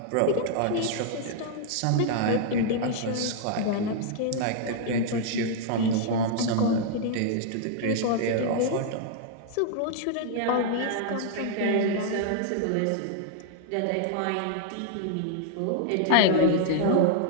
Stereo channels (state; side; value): different; both; correlation -0.01